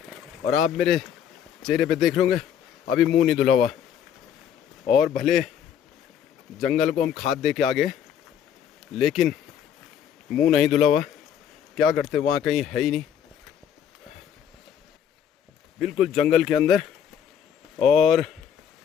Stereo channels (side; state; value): right; quieter; 8.9 dB